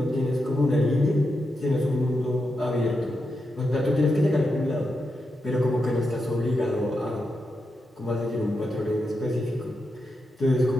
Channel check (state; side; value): normal; both; correlation 0.86